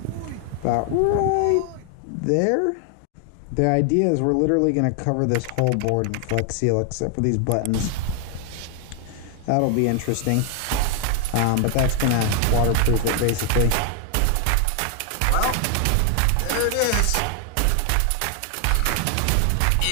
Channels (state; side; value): different; both; correlation 0.00